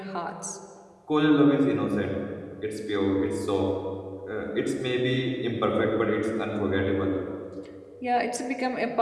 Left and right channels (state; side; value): identical; both; correlation 1.00